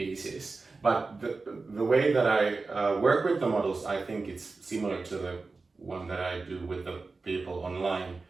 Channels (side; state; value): left; quieter; 3.9 dB